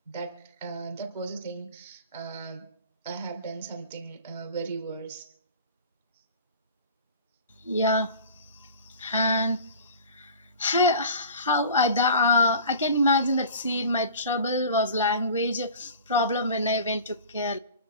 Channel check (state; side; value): inverted; both; correlation -0.41